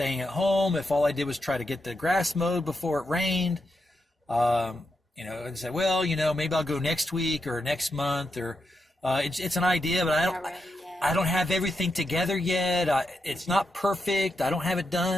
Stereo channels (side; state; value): both; normal; correlation 0.85